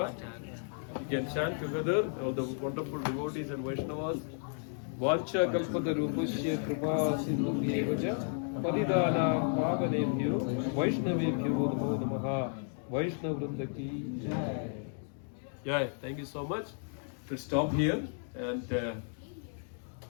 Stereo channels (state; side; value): silent; right; 56 dB below the other